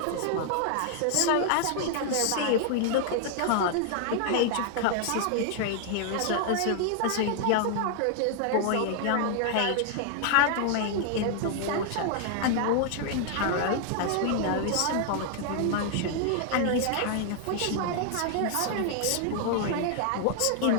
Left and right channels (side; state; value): both; different; correlation 0.00